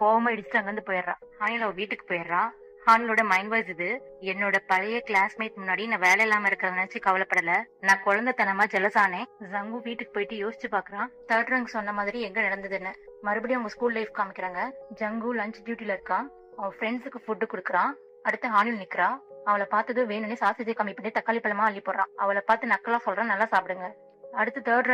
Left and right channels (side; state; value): both; identical; correlation 1.00